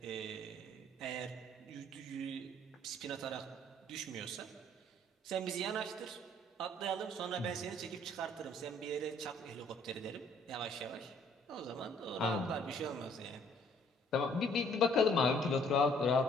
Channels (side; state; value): both; normal; correlation 0.61